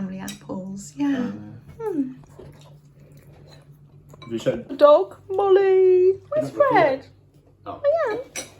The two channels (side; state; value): both; identical; correlation 1.00